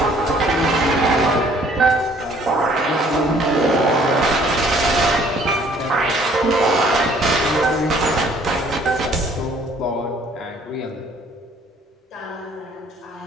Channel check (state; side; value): normal; both; correlation 0.58